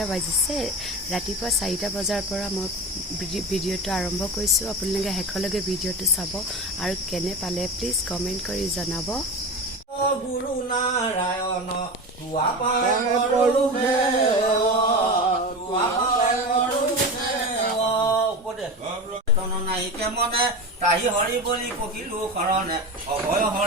বাজিছে। ৰাতিপুৱা 4টা বজাৰ পৰা মই ভিডিঅ'টো আৰম্ভ কৰিছোঁ। আপোনালোকে শেষলৈকে ভিডিঅ'টো চাব আৰু কেনে পালে প্লিজ কমেণ্ট কৰি জনাব। গুৰু নাৰায়ণ মনে তাহি হৰি বলি পকিলো শৰণে অভয়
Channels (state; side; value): normal; both; correlation 0.26